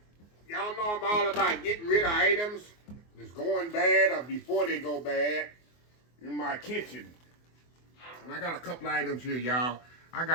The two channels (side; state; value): right; late; 24 ms